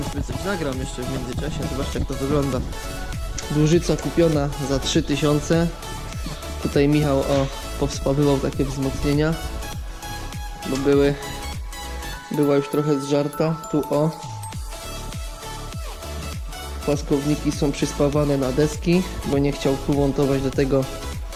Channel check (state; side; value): identical; both; correlation 1.00